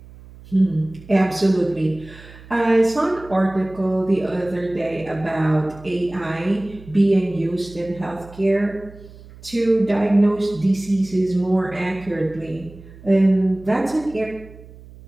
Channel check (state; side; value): noise; right; hum, 20 dB below the sound